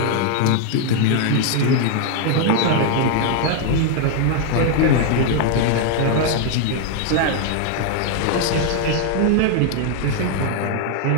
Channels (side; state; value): both; different; correlation 0.00